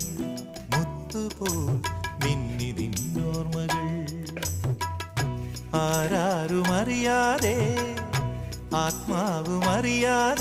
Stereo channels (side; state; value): both; identical; correlation 1.00